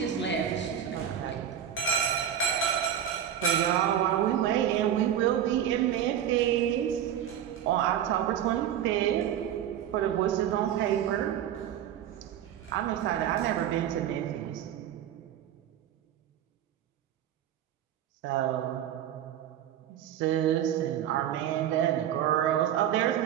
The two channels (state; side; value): quieter; left; 10.2 dB